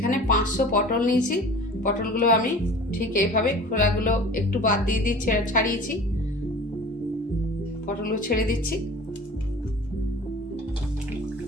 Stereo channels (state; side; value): normal; both; correlation 0.42